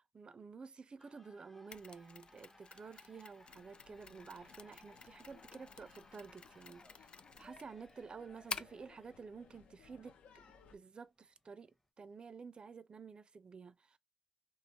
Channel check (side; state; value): both; normal; correlation 0.52